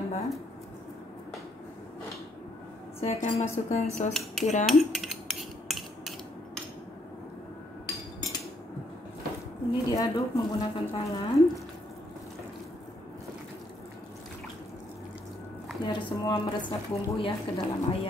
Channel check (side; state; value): both; normal; correlation 0.71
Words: Saya akan masukkan sos tiram. Ini diaduk menggunakan tangan biar semua meresap bumbu ya ke dalam